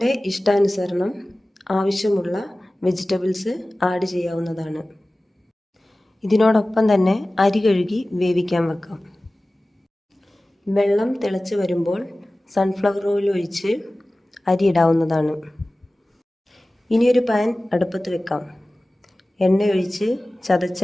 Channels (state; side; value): normal; both; correlation 0.97